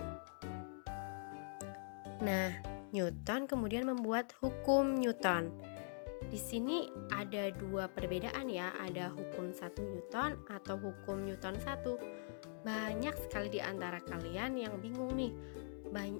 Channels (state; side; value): silent; right; digital silence